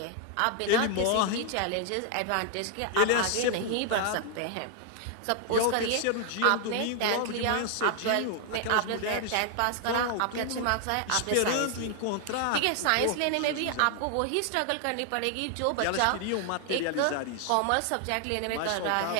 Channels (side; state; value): both; different; correlation 0.00